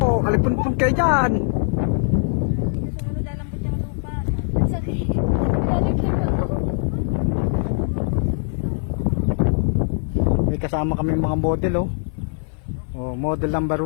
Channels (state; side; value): silent; right; 56 dB below the other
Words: Oh, alipun-pun kayo dyan. Sumunod lalambot yung lupa. Sakit. May kasama kami mga model, oh. Oh, model number